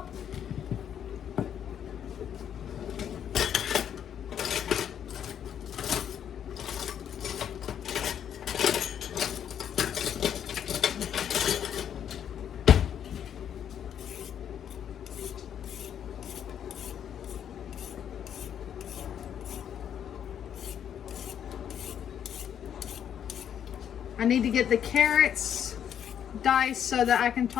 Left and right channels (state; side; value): quieter; right; 9.1 dB